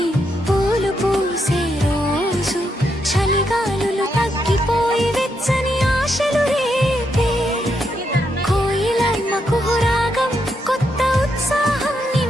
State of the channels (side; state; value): both; normal; correlation 0.80